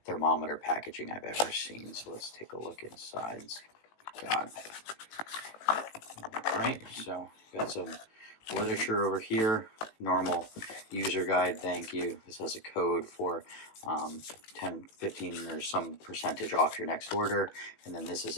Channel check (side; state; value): right; late; 18 ms